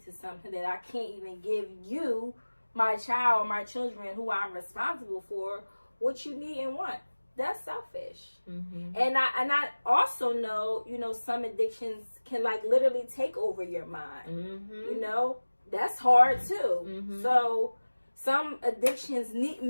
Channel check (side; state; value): both; inverted; correlation -1.00